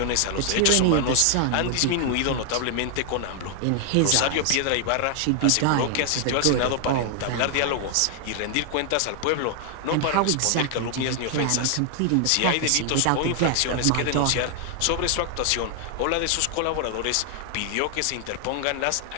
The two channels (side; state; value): both; different; correlation 0.00